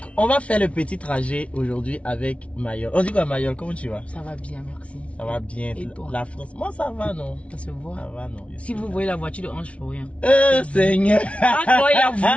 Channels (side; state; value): right; late; 0.063 ms